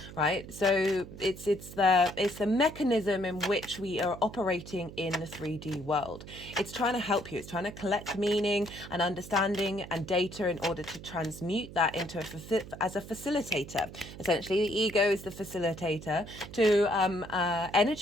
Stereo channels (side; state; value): right; noise; hum, 14 dB below the sound